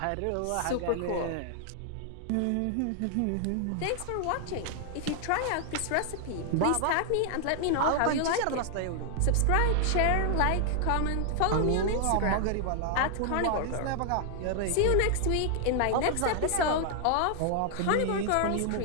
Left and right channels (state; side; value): different; both; correlation 0.00